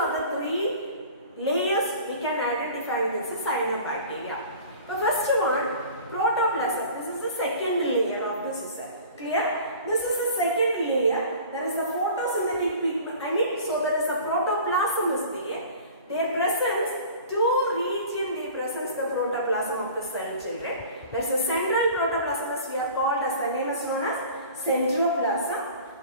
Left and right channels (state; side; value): inverted; both; correlation -0.43